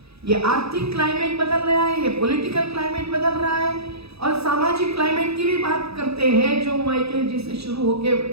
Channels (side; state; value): left; late; 0.78 ms